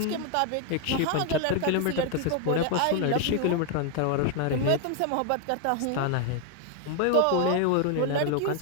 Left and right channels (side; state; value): both; different; correlation 0.00